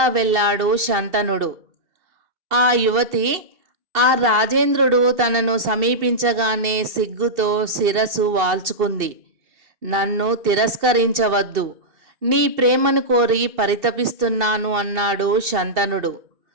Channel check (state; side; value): late; left; 2.7 ms